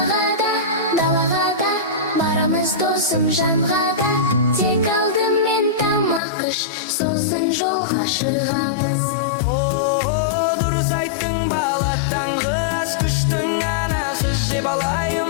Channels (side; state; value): right; drops out; at 6.2 s